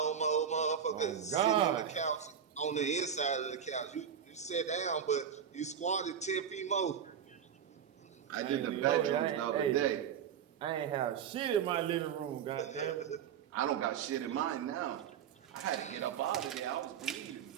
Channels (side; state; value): left; quieter; 8.2 dB